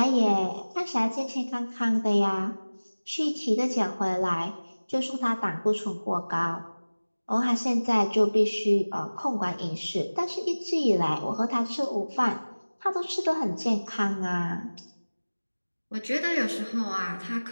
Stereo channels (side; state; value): both; inverted; correlation -1.00